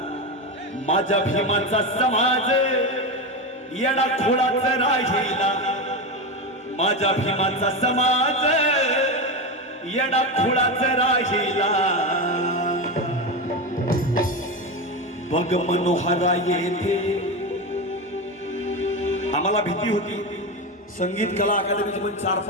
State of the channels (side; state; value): both; normal; correlation 0.17